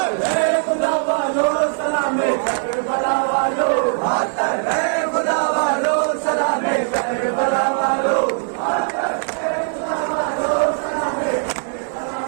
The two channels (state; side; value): silent; left; 66 dB below the other